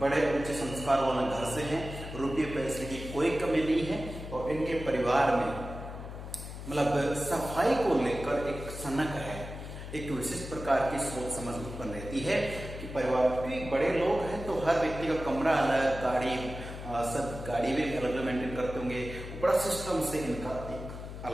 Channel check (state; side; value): noise; left; hum, 10 dB below the sound